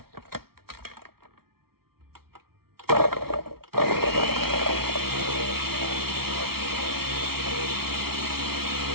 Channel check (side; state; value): left; late; 0.94 ms